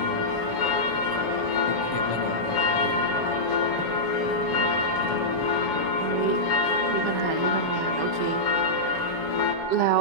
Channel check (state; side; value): late; right; 7.1 ms